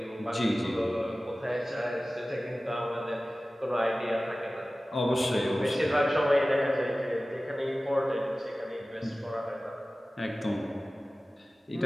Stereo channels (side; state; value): both; normal; correlation 0.97